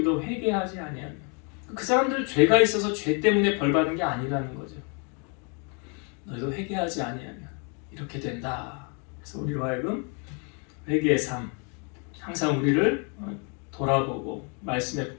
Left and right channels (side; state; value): right; quieter; 36.7 dB